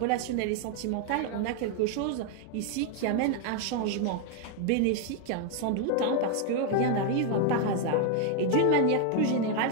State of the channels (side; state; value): both; different; correlation 0.01